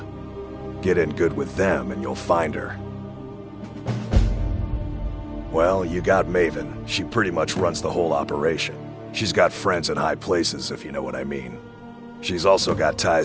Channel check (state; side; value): identical; both; correlation 1.00